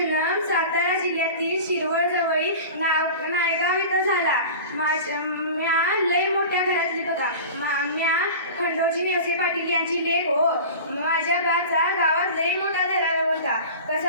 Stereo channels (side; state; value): both; inverted; correlation -0.35